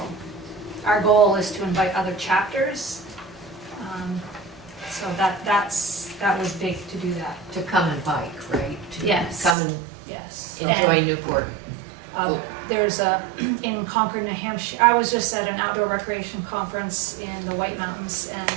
our goal is to invite other chapters. So that was big to do that. To come and bike, right? To Yes. come and Yes. enjoy And, Newport. There's in Concord, New Hampshire, I was just at an outdoor recreation conference in the White Mountains, and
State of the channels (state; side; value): drops out; left; at 9.6 s